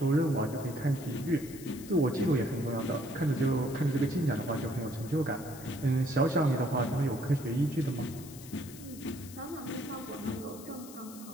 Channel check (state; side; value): noise; left; hiss, 16 dB below the sound